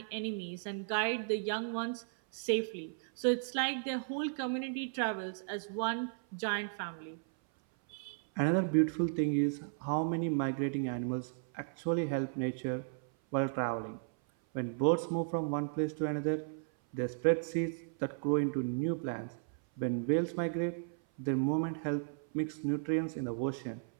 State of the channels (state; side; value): silent; left; 54 dB below the other